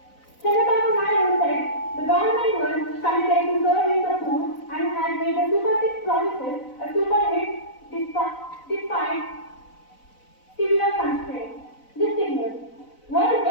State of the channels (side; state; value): right; late; 4.0 ms